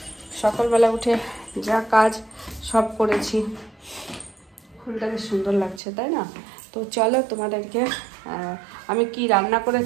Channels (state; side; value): drops out; left; at 5.8 s